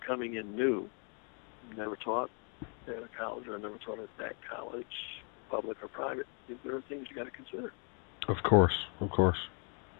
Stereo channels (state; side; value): quieter; right; 38.9 dB